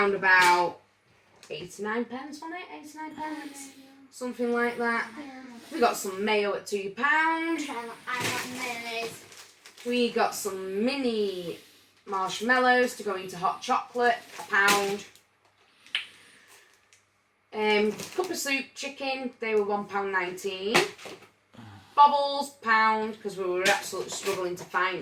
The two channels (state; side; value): identical; both; correlation 1.00